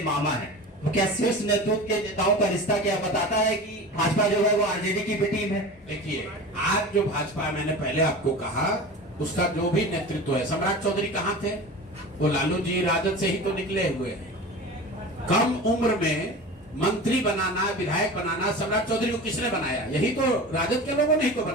मामा है। तो क्या शीर्ष नेतृत्व के नेताओं का रिश्ता क्या बताता है कि भाजपा जो है वो आरजेडी की भी टीम है? देखिए, आज जो भाजपा, मैंने पहले आपको कहा, उसका जो भी नेतृत्व है, सम्राट चौधरी कहाँ थे? वो लालू जी राजद से ही तो निकले हुए हैं। कम उम्र में मंत्री बनाना, विधायक बनाना सम्राट चौधरी को किसने बनाया? यही तो राजद के लोगों ने ही तो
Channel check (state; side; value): normal; both; correlation 0.33